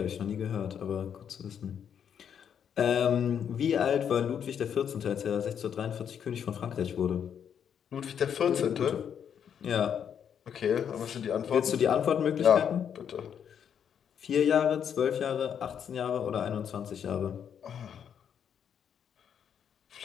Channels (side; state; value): right; quieter; 8.2 dB